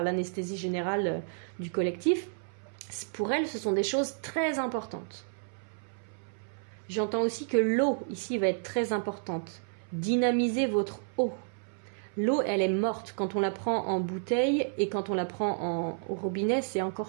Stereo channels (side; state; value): left; silent; 57 dB below the other